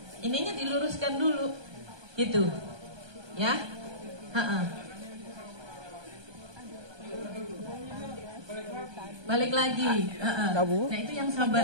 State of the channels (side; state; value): left; late; 1.2 ms